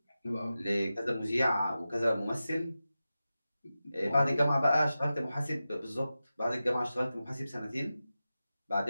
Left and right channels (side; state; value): both; inverted; correlation -0.93